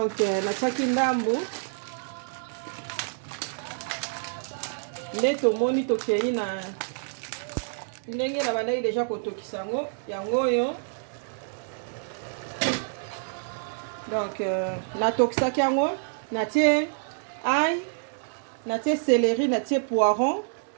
natiaki ndambu nde tomoni tokei na ndenge na bandaki deja kotokisa yango oyo. Donc natokisaki yango natie ail, natie céleri, natie poiron,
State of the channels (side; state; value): left; silent; digital silence